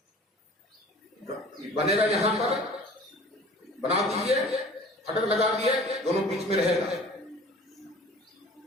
बनेगा यहां पर, बना दीजिए, फटक लगा दिए, दोनों बीच में रहेगा।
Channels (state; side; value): normal; both; correlation 0.46